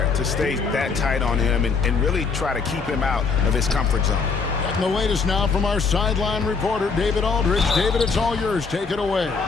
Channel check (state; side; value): quieter; right; 4.9 dB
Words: to stay that tight on him and really try to keep him out of his comfort zone. And the latest now from our sideline reporter, David Aldridge. David, it's all yours. Take it away.